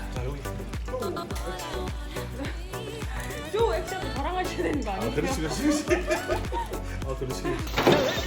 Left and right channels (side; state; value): both; identical; correlation 1.00